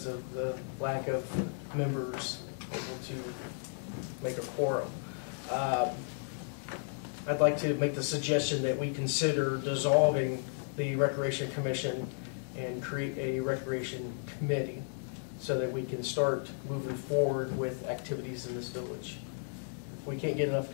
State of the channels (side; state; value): right; silent; digital silence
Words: of the lack of members able to make a quorum. I'd like to make the suggestion that we consider dissolving the Recreation Commission and create a Recreation Committee so that we can start moving forward with activities in this village. we can't get enough